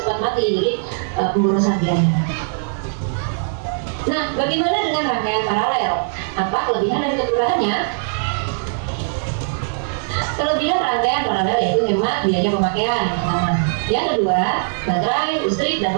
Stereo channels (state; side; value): silent; left; digital silence